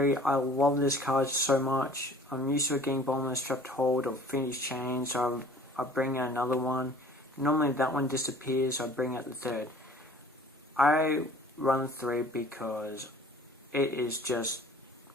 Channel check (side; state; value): both; normal; correlation 0.49